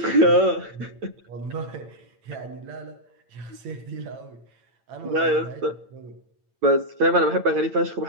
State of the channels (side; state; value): left; late; 8.9 ms